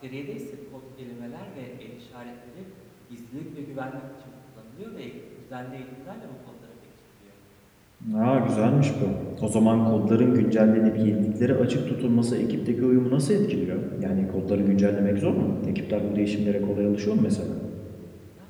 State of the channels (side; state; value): both; identical; correlation 1.00